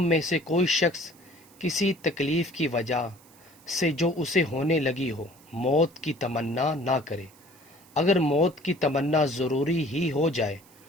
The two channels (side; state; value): right; noise; hiss, 26 dB below the sound